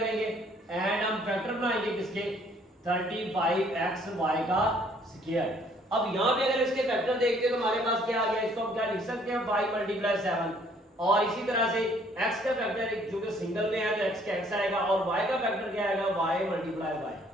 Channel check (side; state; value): both; normal; correlation 0.61